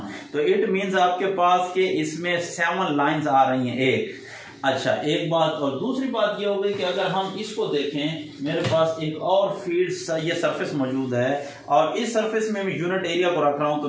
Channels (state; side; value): identical; both; correlation 1.00